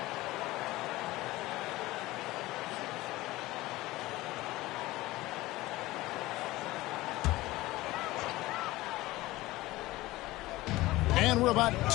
And we're about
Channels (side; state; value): right; quieter; 18.5 dB